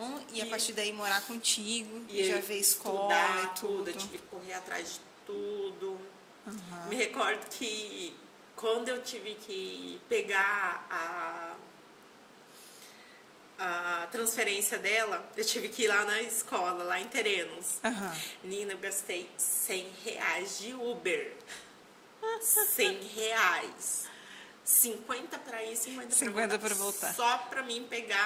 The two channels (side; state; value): both; identical; correlation 1.00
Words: e a partir daí morar contigo, E já ver escola e tudo. Eu tive que correr atrás de tudo. Me recordo que quando eu tive que pegar a transferência dela, eu tive que ir lá na escola, lá em Terenos. Nina, eu gastei R$100 de Uber. R$100. 50 para ir, 50 para voltar. Só para mim